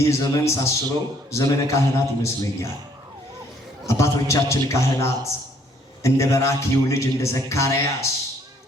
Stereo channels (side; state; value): both; normal; correlation 0.64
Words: ዘመን ሳስበው ዘመነ ካህናት ይመስለኛል። አባቶቻችን ካህናት እንደ በራኪው ልጅ እንደ ዘካርያስ